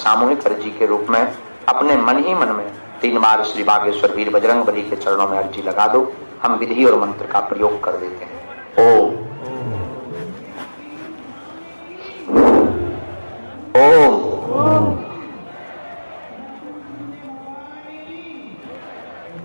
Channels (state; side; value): inverted; both; correlation -1.00